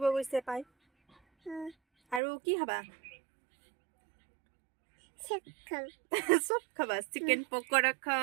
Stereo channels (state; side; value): drops out; left; at 2.2 s